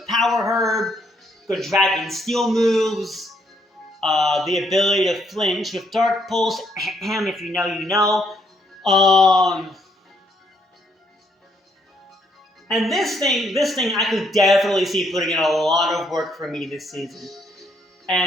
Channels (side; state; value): both; normal; correlation 0.71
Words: Power Herb, good Dragon Steel moves, the ability to flinch with Dark Pulse, if you know, you know. And this thing I could definitely see putting in a lot of work for me this season.